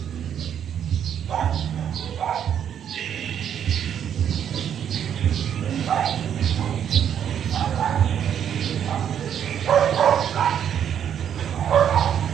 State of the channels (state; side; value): quieter; left; 9.1 dB